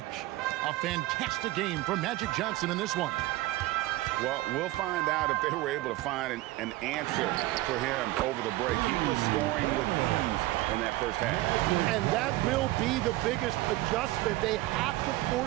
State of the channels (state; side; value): quieter; left; 18.0 dB